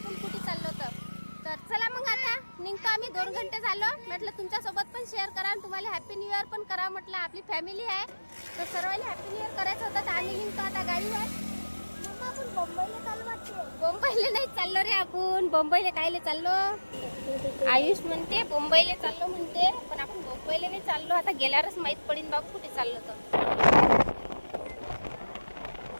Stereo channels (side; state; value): both; inverted; correlation -1.00